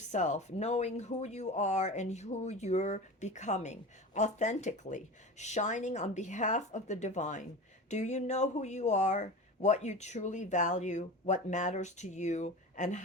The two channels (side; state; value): both; normal; correlation 0.31